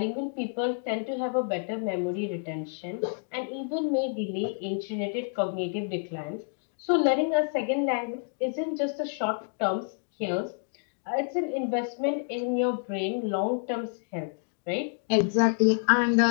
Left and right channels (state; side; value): silent; right; 59 dB below the other